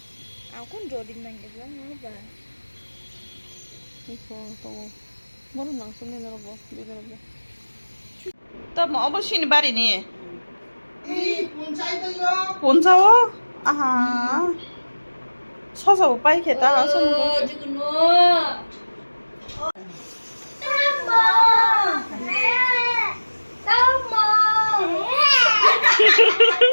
aku jodi nang ke bilang mana ba 이거 또 뭐는 낭송이 내려봐 내려봐 또 뭐 어버신이 말이니 이 본사이도요 본사워 아하 서서 오빠 이렇게 따라 서는 거 지금 너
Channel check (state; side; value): inverted; both; correlation -1.00